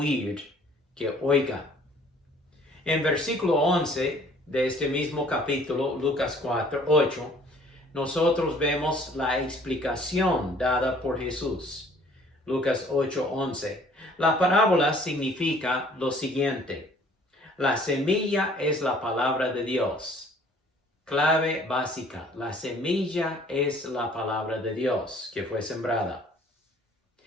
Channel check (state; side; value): normal; both; correlation 0.56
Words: que oiga. En versículo 11 de este mismo capítulo, Lucas 8, nosotros vemos la explicación dada por Jesús. Lucas 8:11. La parábola significa lo siguiente: la semilla es la palabra de Dios. Clave básica: la semilla es la palabra de Dios que fue sembrada.